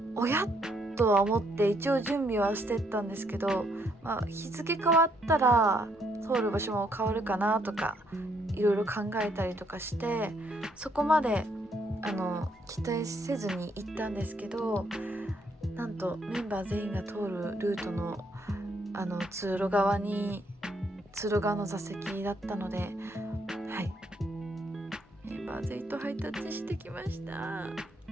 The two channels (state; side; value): normal; both; correlation 0.72